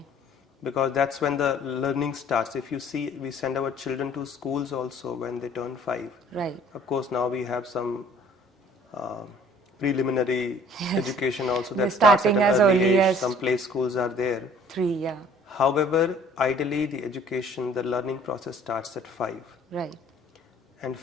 Because that's when the learning starts. If you see, we send our children to schools also when they turn 5. Right. Of course, now we have some preliminary education also that starts at an early age. Some play schools are there. 3, yeah. However, ideally the education, the learning process starts at 5. Right. And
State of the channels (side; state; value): both; normal; correlation 0.54